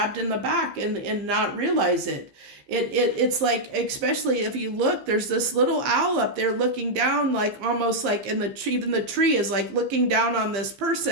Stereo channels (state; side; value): late; left; 15 ms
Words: in the back and not realize it. It's like, especially if you look, there's this little owl up there looking down, like almost like in the tree, even the tree is like looking down on this